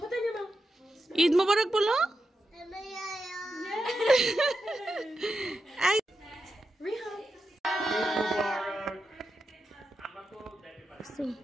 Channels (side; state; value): both; normal; correlation 0.88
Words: পতা নে মা। ঈদ মোবারক বলো। রিহান